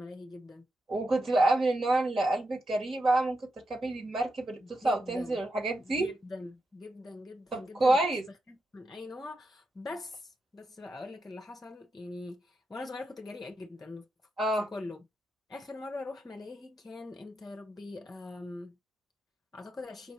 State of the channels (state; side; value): normal; both; correlation 0.87